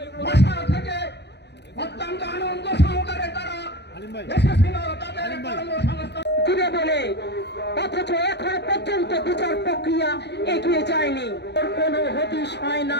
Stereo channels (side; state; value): right; late; 0.50 ms